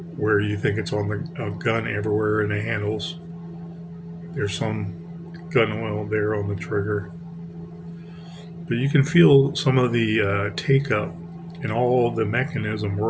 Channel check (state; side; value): identical; both; correlation 1.00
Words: Where you think it's on the gun everywhere in the handles, there's some gun oil there on the trigger. But you can feel some of the take-up and all the mechanism